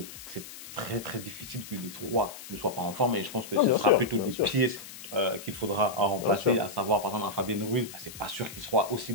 c'est très, très difficile que les trois ne soient pas en forme. Et je pense que ce sera plutôt des pièces qu'il faudra remplacer, à savoir par exemple un Fabien Ruiz, c'est pas sûr qu'il sera aussi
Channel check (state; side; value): noise; left; hiss, 14 dB below the sound